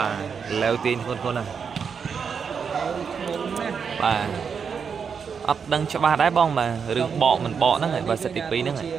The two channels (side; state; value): left; quieter; 6.4 dB